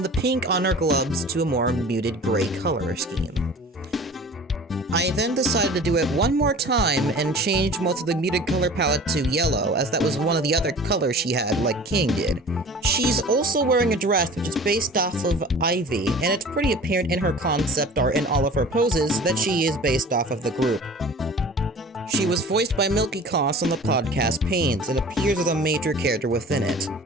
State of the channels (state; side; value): normal; both; correlation 0.42